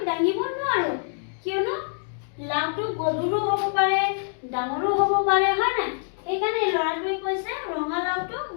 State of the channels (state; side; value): silent; right; digital silence